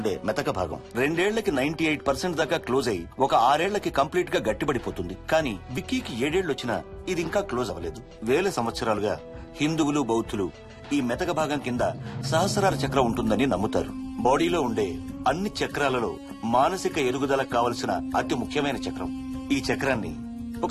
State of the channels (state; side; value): identical; both; correlation 1.00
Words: మెతక భాగం 2 ఏళ్లకి 98% దాకా క్లోజ్ అయి ఒక 6 ఏళ్లకి కంప్లీట్ గా గట్టిపడిపోతుంది. కానీ విక్కీకి 7 ఏళ్లు వచ్చినా ఇది ఇంకా క్లోజ్ అవ్వలేదు. వేల సంవత్సరాలుగా హిందువులు, బౌద్ధులు ఈ మెతక భాగం కింద సహస్రార చక్రం ఉంటుందని నమ్ముతారు. బాడీలో ఉండే అన్ని చక్రాలలో మానసిక ఎదుగుదలకు కావలసిన అతి ముఖ్యమైన చక్రం. ఈ చక్రాన్ని